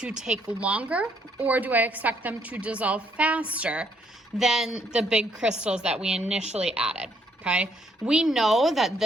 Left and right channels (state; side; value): normal; both; correlation 0.70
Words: take longer, or do I expect them to dissolve faster than the big crystals that we initially added? Okay, we know that